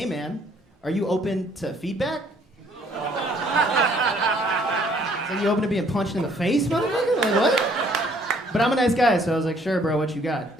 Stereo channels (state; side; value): normal; both; correlation 0.62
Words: man, are you open to feedback?" So you open to being punched in the face, motherfucker? Like, what? But I'm a nice guy, so I was like, "Sure, bro, what you got?"